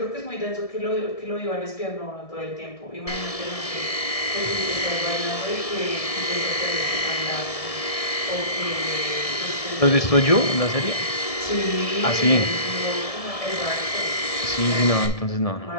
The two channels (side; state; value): right; late; 1.7 ms